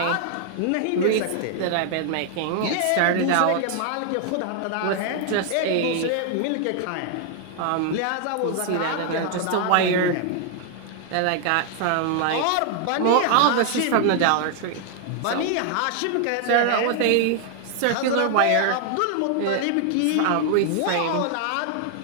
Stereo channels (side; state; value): both; different; correlation 0.00